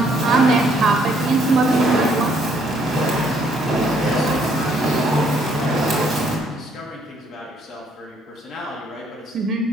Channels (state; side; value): normal; both; correlation 0.67